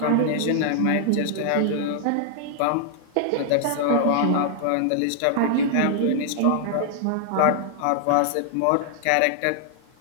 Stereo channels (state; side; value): different; both; correlation 0.00